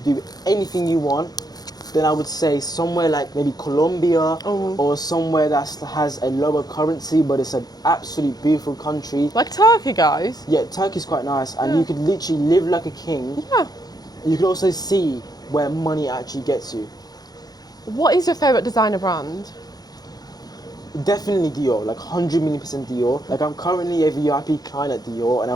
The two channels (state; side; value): late; right; 0.19 ms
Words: do anything you want, then I would say somewhere like maybe Colombia or somewhere that has a lower currency, but it's an absolutely beautiful country. Like Turkey, guys. Yeah, Turkey's quite nice, and you could literally live like a king. Yeah. You could also see where money actually gets you. What is your favourite designer brand? Definitely Dior, like 100 million % Dior. Like, I'm currently a VIP client at Dior, and I